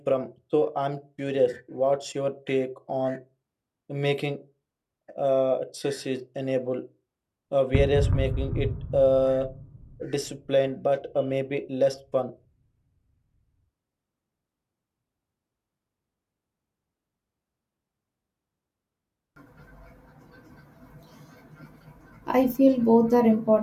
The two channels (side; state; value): both; identical; correlation 1.00